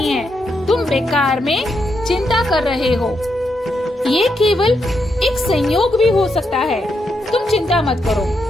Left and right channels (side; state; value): both; normal; correlation 0.82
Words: है, तुम बेकार में चिंता कर रहे हो। ये केवल एक संयोग भी हो सकता है, तुम चिंता मत करो।